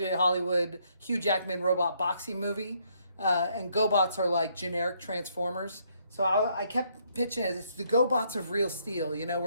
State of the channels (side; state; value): both; inverted; correlation -0.70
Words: Hollywood, Hugh Jackman robot boxing movie, and GoBots are like generic Transformers. So I kept pitching it. It's the GoBots of Real Steel. You know,